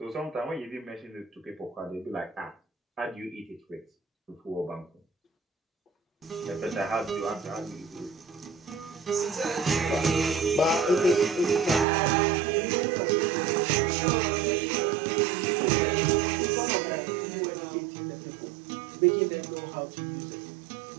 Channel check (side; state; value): left; drops out; at 11.9 s